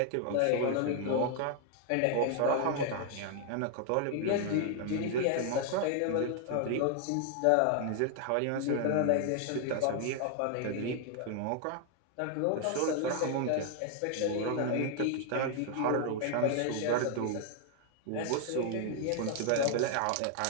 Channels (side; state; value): both; different; correlation 0.00